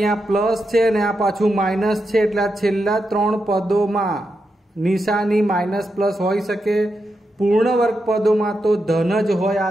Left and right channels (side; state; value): both; normal; correlation 0.86